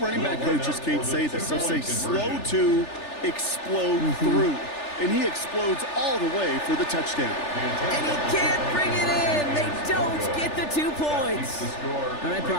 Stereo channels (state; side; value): late; right; 3.4 ms